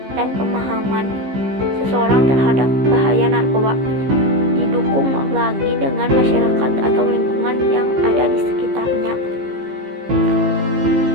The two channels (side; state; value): left; late; 15 ms